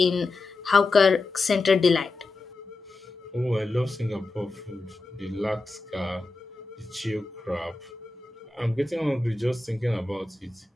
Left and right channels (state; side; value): quieter; right; 3.3 dB